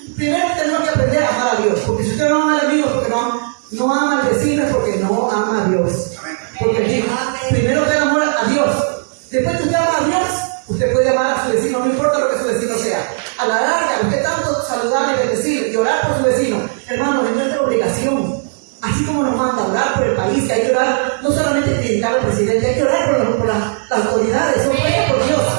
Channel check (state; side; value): silent; left; digital silence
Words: Primero tenemos que aprender a amar a Dios. Porque si usted no ama al enemigo, porque no ama al vecino, es porque no ama a Dios. Porque él dijo: primero ten amor a Después que usted ama a Dios, usted puede amar a su vecino, no importa lo que su vecino sea. A la larga, usted tanto saludar y bendecir y orar por su vecino, hermano, es nuestra obligación. Así como nos manda a orar por el país, que hay que orar, no solamente criticar al presidente, hay que orar por las autoridades, son puestas por Dios.